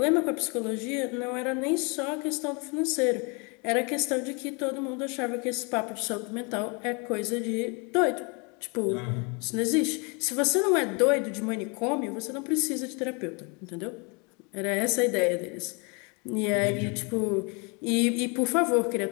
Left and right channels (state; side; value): quieter; right; 32.0 dB